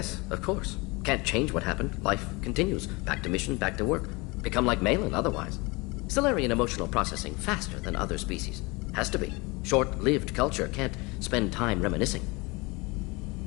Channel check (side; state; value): right; quieter; 25.7 dB